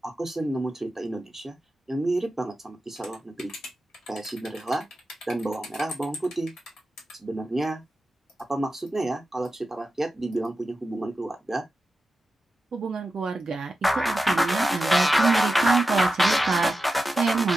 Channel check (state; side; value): normal; both; correlation 0.92